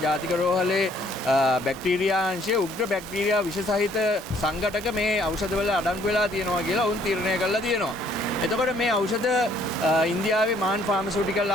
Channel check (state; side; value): normal; both; correlation 0.63